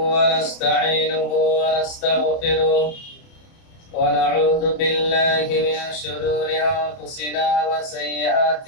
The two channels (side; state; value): right; late; 30 ms